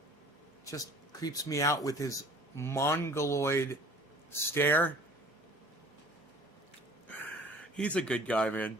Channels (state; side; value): normal; both; correlation 0.50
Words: Just creeps me out with his mongoloid stare. He's a good guy, man.